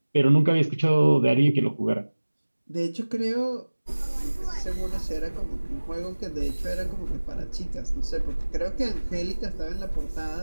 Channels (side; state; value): both; inverted; correlation -1.00